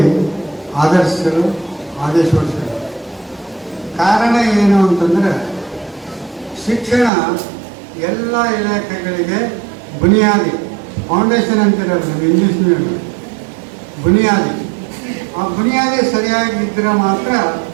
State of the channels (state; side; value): drops out; left; at 7.1 s